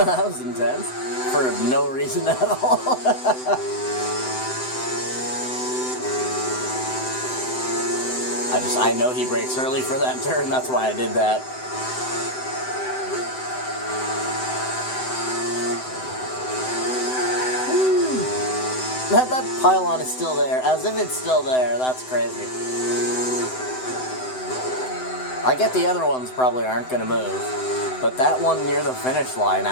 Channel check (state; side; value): late; right; 7.8 ms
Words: was intense. For no reason at all. I know he brakes early for that turn, that's why I did that. That pylon is still there, as if it's still there. That's crazy. I get the other ones probably aren't going to move, but that one near the finish line,